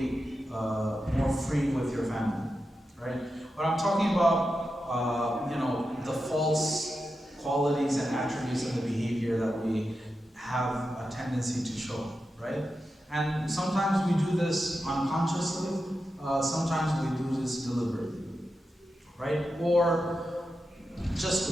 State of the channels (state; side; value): normal; both; correlation 0.90